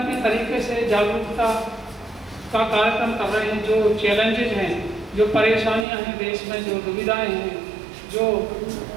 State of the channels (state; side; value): drops out; left; at 5.9 s